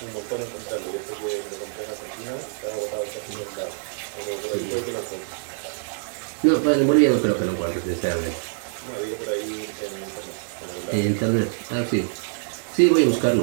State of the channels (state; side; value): silent; left; digital silence